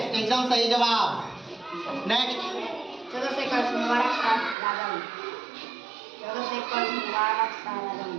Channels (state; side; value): drops out; left; at 4.5 s